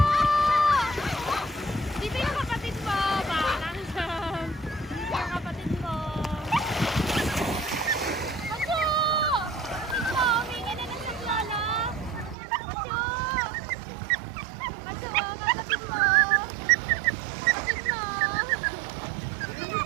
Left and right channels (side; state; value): left; drops out; at 12.4 s